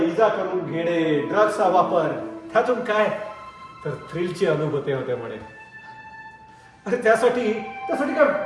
इजा करून घेणे, ड्रग्सचा वापर, त्यातून काय तर थ्रिलची अनुभूती होते म्हणे. अरे त्यासाठी काय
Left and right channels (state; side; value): identical; both; correlation 1.00